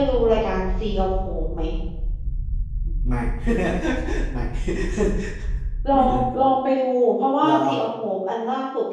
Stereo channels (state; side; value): identical; both; correlation 1.00